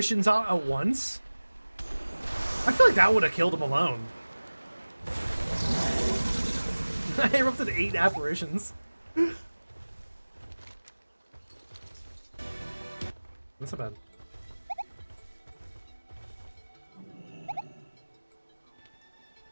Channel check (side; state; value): both; inverted; correlation -1.00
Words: out at once? I feel like that would have killed him alone. I erupted 8 apparitions. That's not bad.